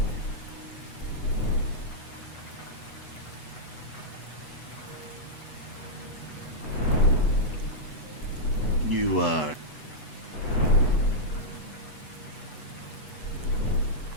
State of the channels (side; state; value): right; late; 8.1 ms